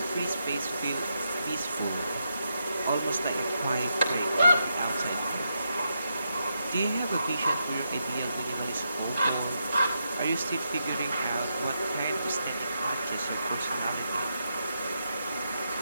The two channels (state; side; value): inverted; both; correlation -0.83